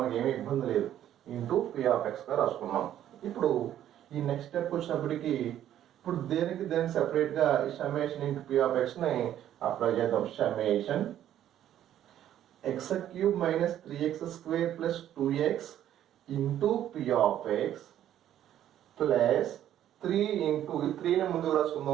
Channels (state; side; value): quieter; left; 11.4 dB